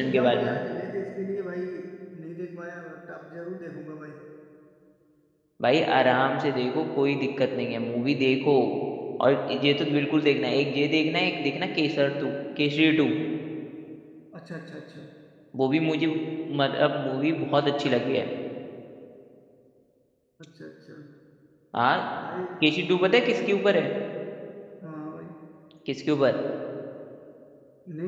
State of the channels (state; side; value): identical; both; correlation 1.00